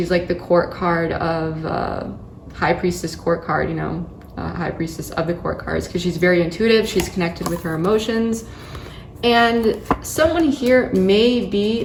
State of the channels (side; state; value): both; identical; correlation 1.00